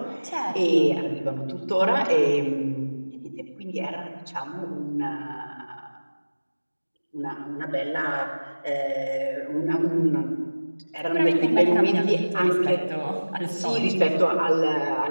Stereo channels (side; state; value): both; inverted; correlation -1.00